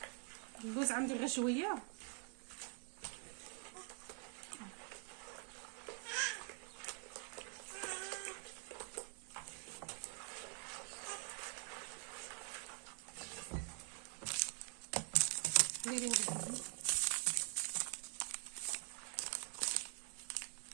اللوز عندي غير شويه.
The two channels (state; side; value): quieter; left; 36.8 dB